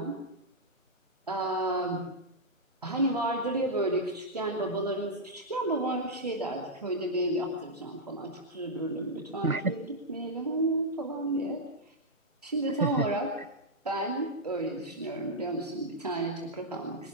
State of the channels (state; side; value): normal; both; correlation -0.06